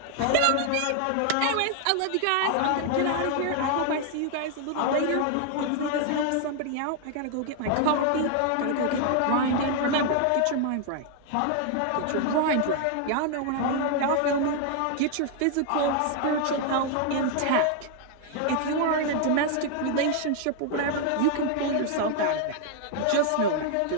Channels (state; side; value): different; both; correlation 0.00